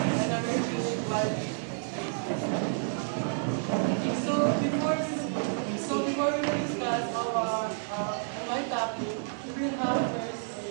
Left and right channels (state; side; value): silent; left; digital silence